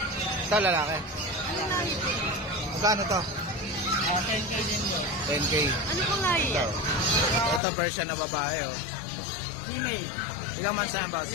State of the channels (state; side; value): drops out; right; at 7.6 s